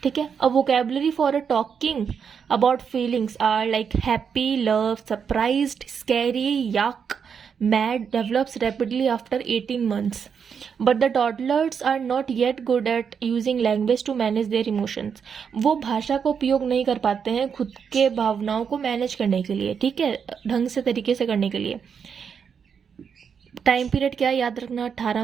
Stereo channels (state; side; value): quieter; left; 6.8 dB